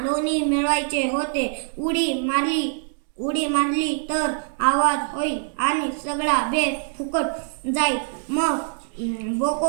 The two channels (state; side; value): silent; left; 63 dB below the other